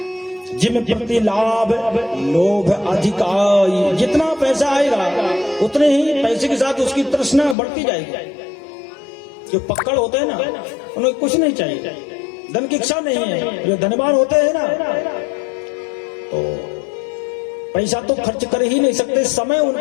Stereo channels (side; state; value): right; drops out; at 7.6 s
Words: जिम प्रति लाभ लोभ अधिकाई, जितना पैसा आएगा उतने ही पैसे के साथ उसकी तृष्णा बढ़ती जाएगी। जो पक्कड़ होते हैं ना, उन्हें कुछ नहीं चाहिए, धन की इच्छा नहीं है। जो धनवान होते हैं ना, तो पैसा तो खर्च कर ही नहीं सकते, समय